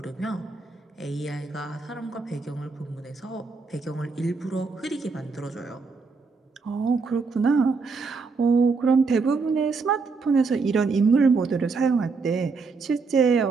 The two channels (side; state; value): left; quieter; 4.5 dB